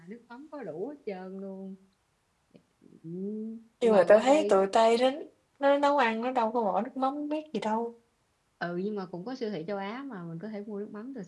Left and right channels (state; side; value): identical; both; correlation 1.00